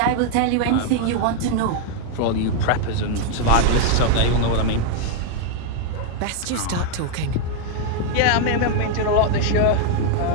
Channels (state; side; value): different; both; correlation 0.00